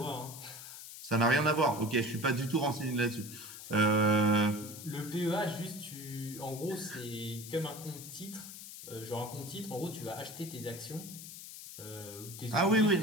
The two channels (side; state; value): left; noise; hiss, 12 dB below the sound